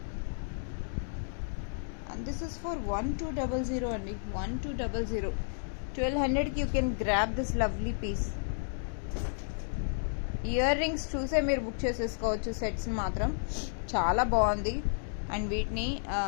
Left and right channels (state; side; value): silent; right; digital silence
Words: and this is for 1200 అండి. 1200. 1200కి you can grab this lovely piece. Ear rings చూసే మీరు బుక్ చేసేసుకోవచ్చు. సెట్స్ మాత్రం చాలా బాగుంది. అండ్ వీటిని